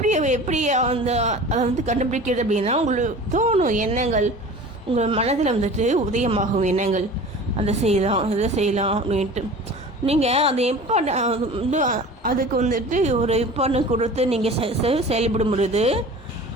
எப்படி அதை வந்து கண்டுபிடிக்கிறது அப்படின்னா, உங்களுக்கு தோணும் எண்ணங்கள், உங்கள் மனதில் வந்துட்டு உதயமாகும் எண்ணங்கள், அதை செய்யலாம் இதை செய்யலாம் அப்படின்ட்டு. நீங்கள் அது அதுக்கு வந்துட்டு ஒரு இம்பார்ட்டன்ஸ் கொடுத்து நீங்கள் செயல்படும் பொழுது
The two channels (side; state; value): both; normal; correlation 0.39